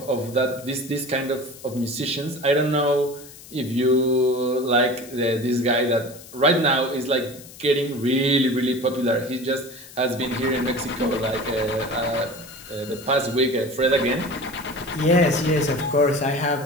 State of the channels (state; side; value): noise; left; hiss, 18 dB below the sound